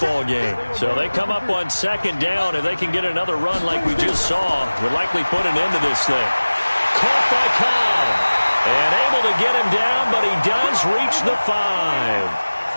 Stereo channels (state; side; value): inverted; both; correlation -1.00